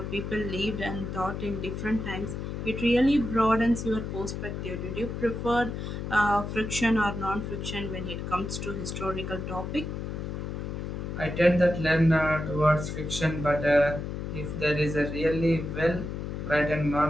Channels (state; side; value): noise; left; hum, 5 dB below the sound